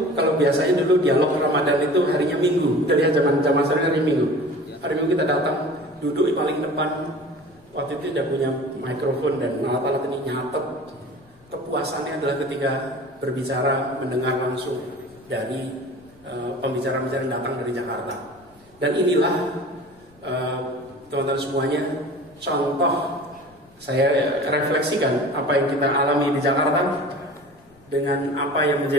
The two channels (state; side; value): noise; left; rumble, 30 dB below the sound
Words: kalau biasanya dulu dialog Ramadan itu harinya Minggu. Kita lihat zaman sekarang hari Minggu. Hari Minggu kita datang, duduk di paling depan. Waktu itu tidak punya mikrofon dan alat-alat ini nyatet. Kepuasannya adalah ketika berbicara, mendengar langsung dari pembicara-pembicara yang datang dari Jakarta. Dan inilah teman-teman semuanya contoh saya refleksikan apa yang kita alami di Jakarta dengan apa yang